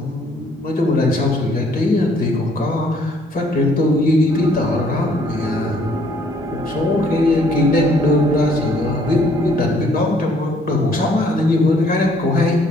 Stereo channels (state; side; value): normal; both; correlation 0.63